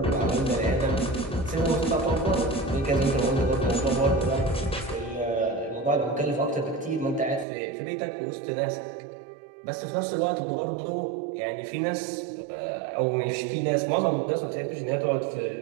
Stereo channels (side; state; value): left; drops out; at 7.5 s